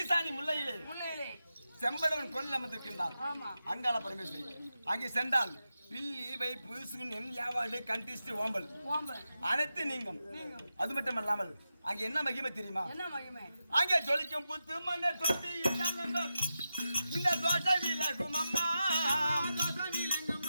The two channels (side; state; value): both; inverted; correlation -0.90